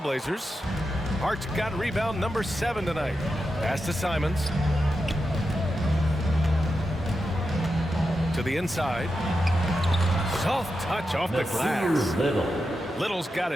Hart's got rebound number 7 tonight. Pass to Simons. To the inside. Soft touch off the glass. Little's got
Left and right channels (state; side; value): normal; both; correlation 0.89